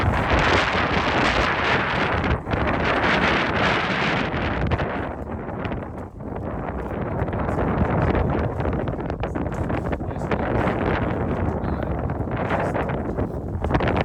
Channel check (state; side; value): identical; both; correlation 1.00